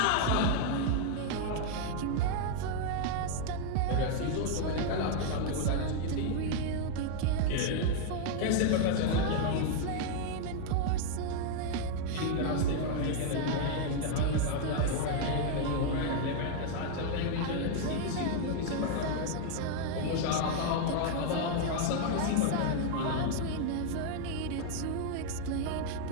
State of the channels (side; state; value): both; different; correlation 0.00